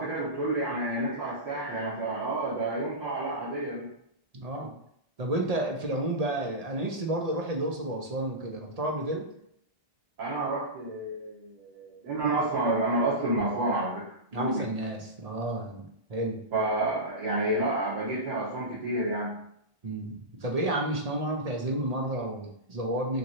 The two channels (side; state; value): left; late; 1.8 ms